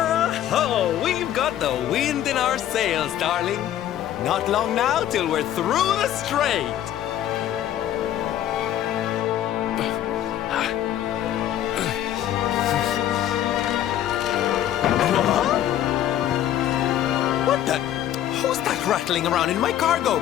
Oh, we've got the wind in our sails, darling. Not long now till we're through the strait. What the? Who's that rattling around in my cargo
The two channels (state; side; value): quieter; right; 11.7 dB